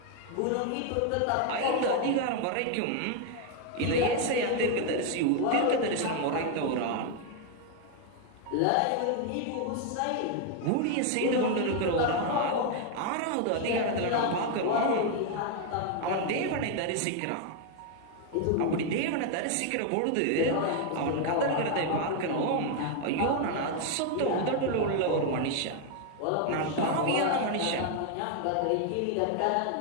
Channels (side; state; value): both; different; correlation 0.01